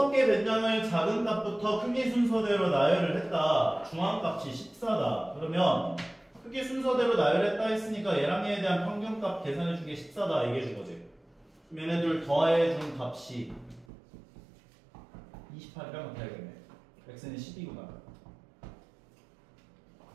변량을 작은 값부터 크기 순서대로 나열을 했다. 중앙값이 14다. 그러면 크기 순서대로 나열했다 했으니까 얘랑 얘에 대한 평균값 계산해준 게 14다 얘기해준 거지. 그럼 얘네들 더해준 값이 28이랑 같아야겠네. x는 10이구나.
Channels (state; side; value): drops out; left; at 13.9 s